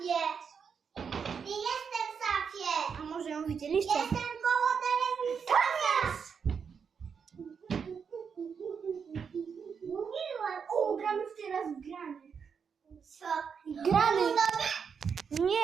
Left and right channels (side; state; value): left; quieter; 6.4 dB